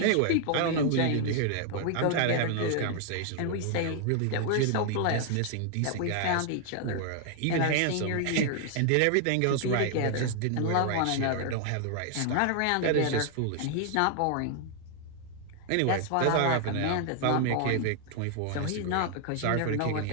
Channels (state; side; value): different; both; correlation 0.00